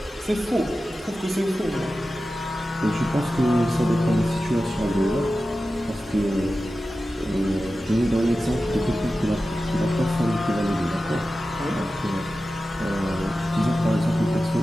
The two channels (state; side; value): normal; both; correlation 0.94